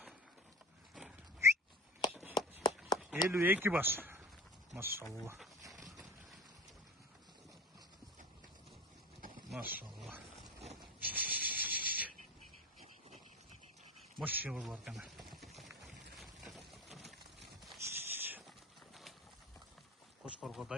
52 баш. Машалла. Машалла. Мощный бар экен. Кошкорго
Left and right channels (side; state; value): both; normal; correlation 0.34